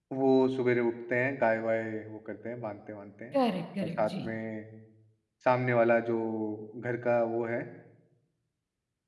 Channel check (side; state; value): both; identical; correlation 1.00